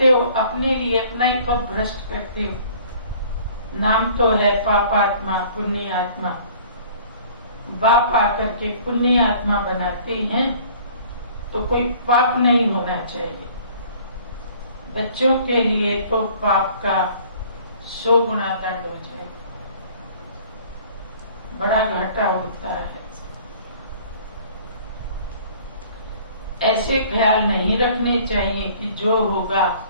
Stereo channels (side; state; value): both; inverted; correlation -0.52